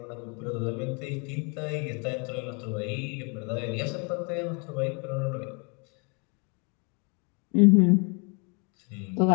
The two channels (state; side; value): quieter; right; 34.1 dB